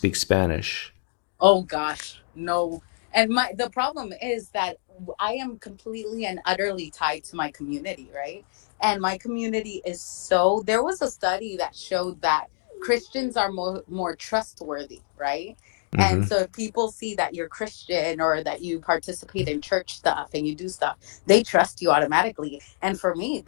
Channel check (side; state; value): right; silent; digital silence